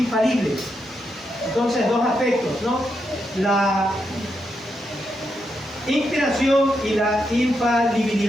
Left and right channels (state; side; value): normal; both; correlation 0.83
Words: Entonces, dos aspectos, ¿no? La inspiración y la